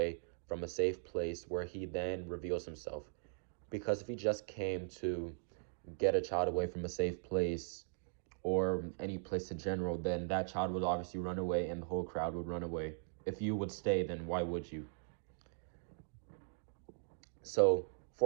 from a safe place where he then reveals himself. Because if he just came to get a child away from a safe place or any place in general, then that child would obviously run away and the whole crowd would run away. If you would stay, then why would you? So,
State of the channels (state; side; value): silent; left; digital silence